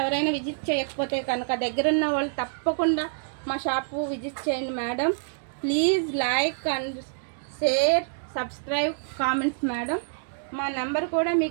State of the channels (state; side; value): silent; left; digital silence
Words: ఎవరైనా విజిట్ చేయకపోతే కనుక దగ్గరున్న వాళ్ళు తప్పకుండా మా షాపు విజిట్ చేయండి madam. Please like and share, subscribe, comments madam. మా నెంబర్ కూడా